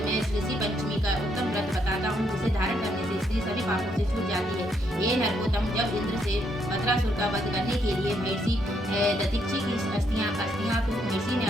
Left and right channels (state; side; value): normal; both; correlation 0.74